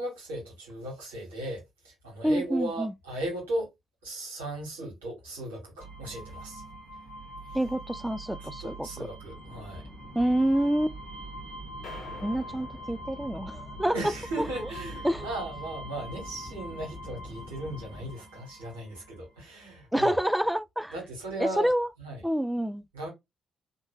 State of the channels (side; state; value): both; normal; correlation 0.90